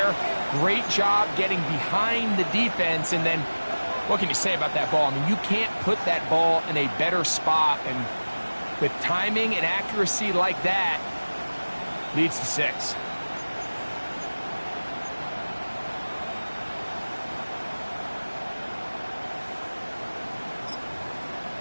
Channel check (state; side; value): inverted; both; correlation -1.00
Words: Great job getting behind the defense. And then, what can you say about that ball? I mean, you can't put that ball in a better spot. And with timing and accuracy like that, leads to 6.